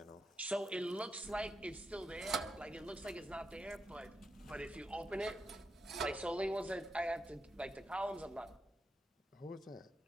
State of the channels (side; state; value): both; normal; correlation 0.84